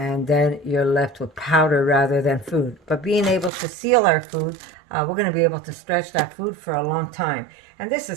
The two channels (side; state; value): left; drops out; at 3.5 s